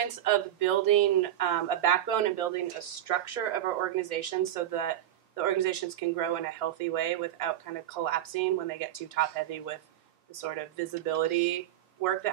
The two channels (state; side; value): quieter; left; 12.1 dB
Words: of building a backbone and building a structure of our organization so that the organizations can grow in a healthy way without kind of collapsing when they get too top-heavy with the sort of visibility work